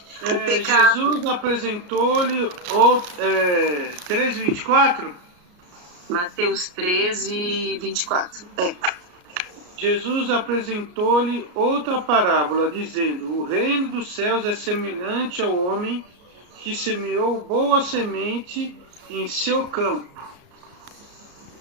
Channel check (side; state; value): left; late; 34 ms